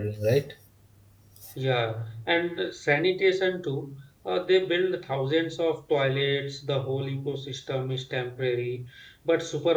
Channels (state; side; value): identical; both; correlation 1.00